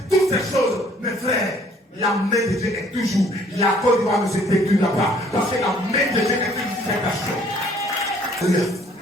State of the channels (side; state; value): both; normal; correlation 0.59